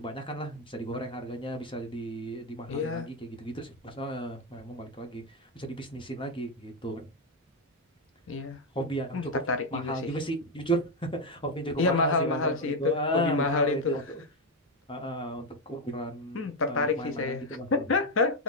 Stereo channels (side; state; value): both; normal; correlation 0.06